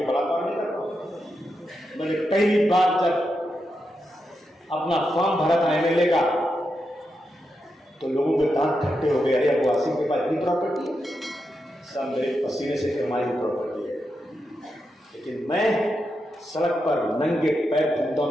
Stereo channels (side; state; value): both; normal; correlation 0.86